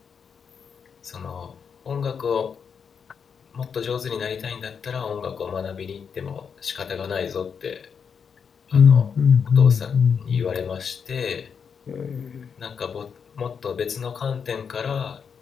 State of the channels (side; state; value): right; quieter; 6.6 dB